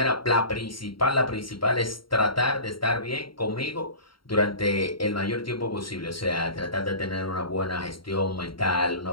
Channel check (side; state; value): right; late; 0.73 ms